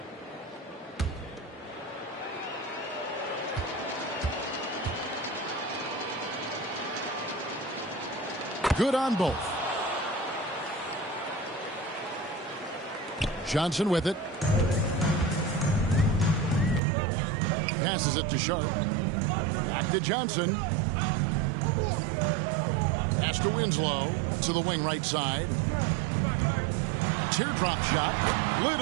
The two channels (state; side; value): drops out; left; at 16.8 s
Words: Good on both. Johnson with it. Passes it to Sharp. Back to Johnson. Pass to Winslow. To the wing right side. Teardrop shot.